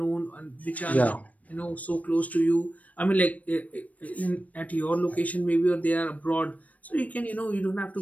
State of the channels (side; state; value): right; late; 0.070 ms